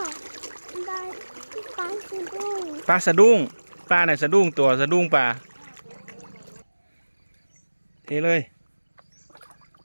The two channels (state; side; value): inverted; both; correlation -1.00